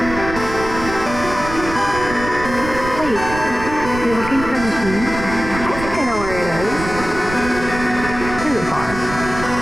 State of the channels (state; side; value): noise; right; rumble, 9 dB below the sound